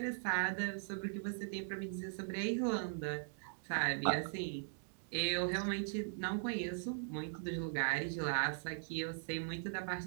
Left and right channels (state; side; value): silent; left; digital silence